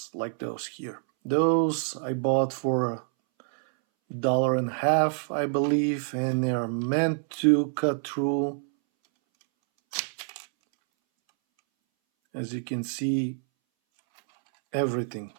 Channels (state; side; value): silent; left; 60 dB below the other